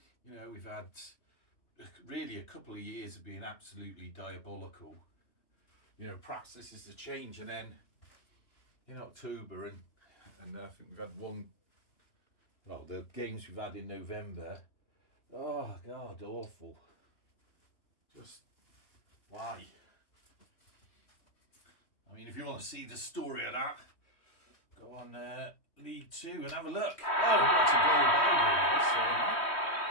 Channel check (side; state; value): right; late; 3.1 ms